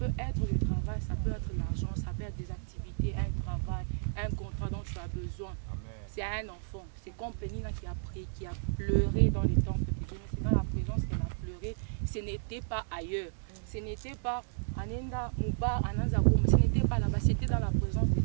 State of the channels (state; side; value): silent; left; digital silence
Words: être le travail, ça peut être l'argent, ça peut être des activités, un travail, un contrat dont tu as besoin. C'est un enfant. C'est comme Pénine qui a pleuré dans les temples de Dieu. C'est dans la présence qu'elle a pleuré. Ce n'était pas ailleurs. Ce n'était pas Anenda Mouba, Ananzakoum. Ce n'était pas là-bas. C'était dans la présence de